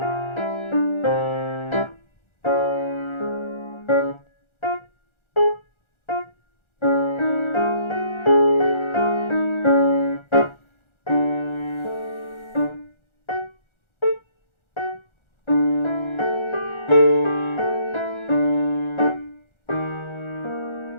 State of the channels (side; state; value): right; late; 1.4 ms